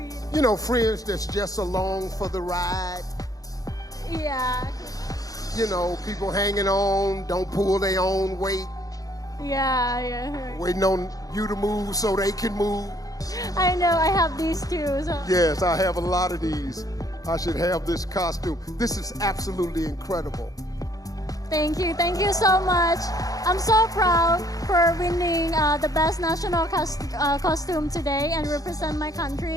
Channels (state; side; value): late; right; 0.17 ms